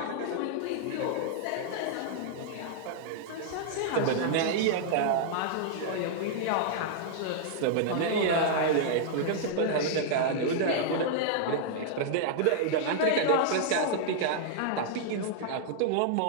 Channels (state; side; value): different; both; correlation -0.01